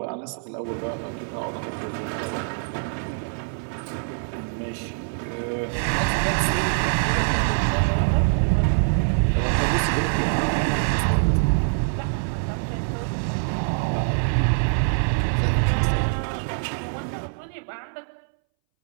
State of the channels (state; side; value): silent; left; 62 dB below the other